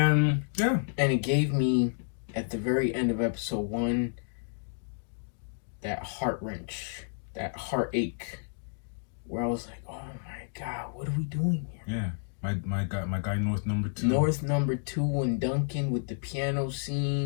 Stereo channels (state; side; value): silent; right; digital silence